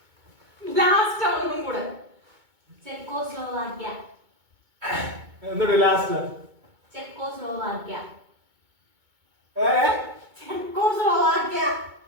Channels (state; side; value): late; left; 2.2 ms